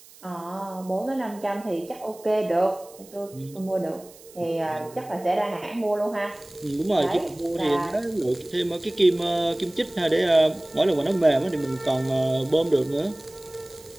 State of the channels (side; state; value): right; noise; hiss, 22 dB below the sound